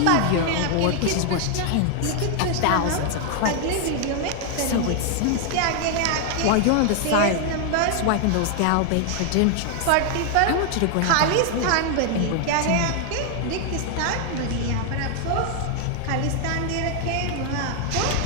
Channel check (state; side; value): different; both; correlation 0.00